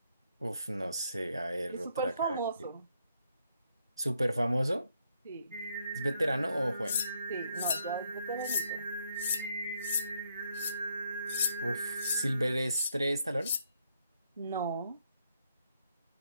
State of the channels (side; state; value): both; inverted; correlation -0.73